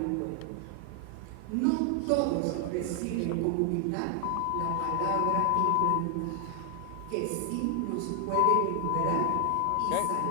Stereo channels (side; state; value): both; different; correlation 0.00